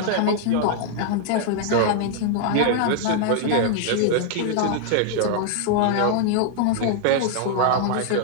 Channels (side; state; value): both; different; correlation 0.00